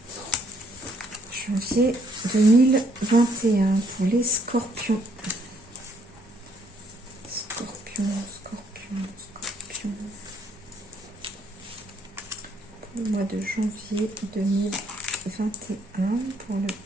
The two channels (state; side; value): normal; both; correlation 0.68